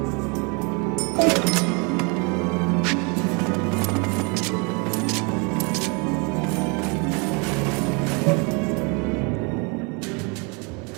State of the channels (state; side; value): quieter; left; 32.1 dB